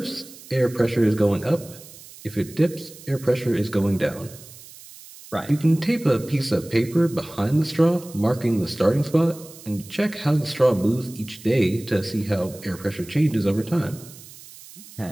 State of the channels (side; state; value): right; noise; hiss, 19 dB below the sound